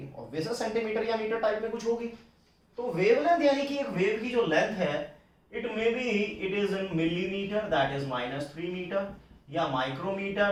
ऑब्वियस सेंटीमीटर या मीटर टाइप में कुछ होगी। तो वेवलेंथ यानी कि एक वेव की जो लेंथ है, it may be it is in millimetre that is -3 metre, या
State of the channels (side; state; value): both; identical; correlation 1.00